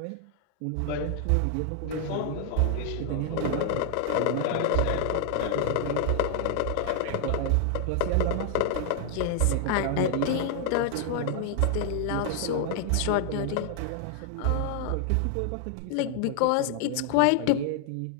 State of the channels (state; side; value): different; both; correlation 0.00